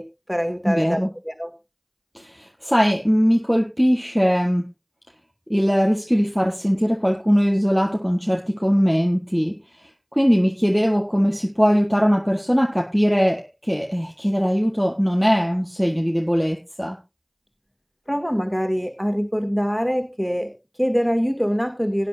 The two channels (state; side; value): identical; both; correlation 1.00